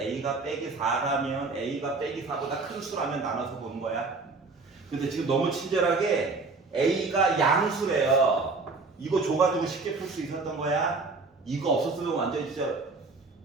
빼기 4라면 a가 빼기 4보다 큰 수라면 나눠서 보는 거야. 근데 지금 너무 친절하게 a가 양수래요. 이거 줘가지고 쉽게 풀 수 있었던 거야. 이거 없었으면 완전히 진짜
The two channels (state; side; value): quieter; left; 3.9 dB